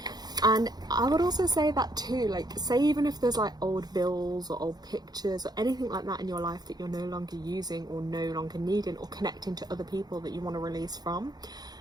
And I would also say that too, like, say even if there's like old bills or old pictures or anything like that in your life that you're no longer using or no longer needing, or connecting to other people that you want to release from,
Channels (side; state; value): left; late; 0.19 ms